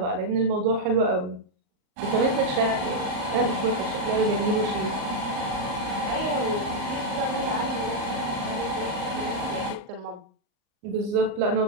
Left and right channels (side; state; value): left; late; 39 ms